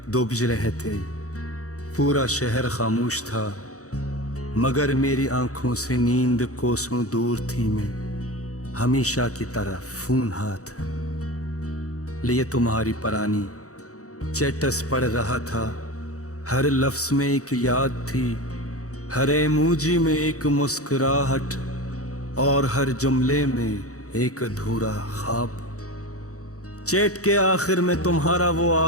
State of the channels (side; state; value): right; late; 0.65 ms